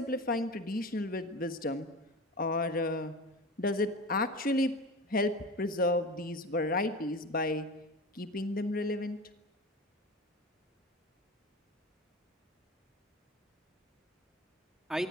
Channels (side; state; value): both; normal; correlation 0.30